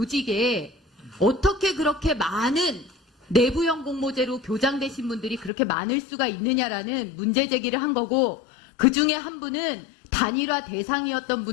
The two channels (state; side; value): drops out; right; at 5.5 s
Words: 어떻게 그렇게 많은 내부형 공모제로 교장되신 분들이 그렇게 많을 수가 있느냐라는 문제 제기를 한 거고 그 중에 한 분은 단일화 대상이었던